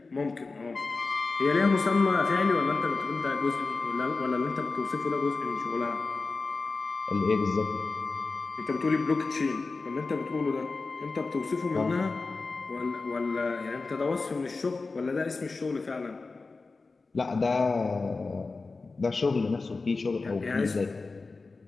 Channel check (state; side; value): quieter; right; 3.9 dB